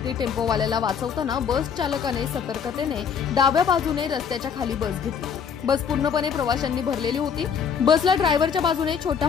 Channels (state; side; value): quieter; right; 7.0 dB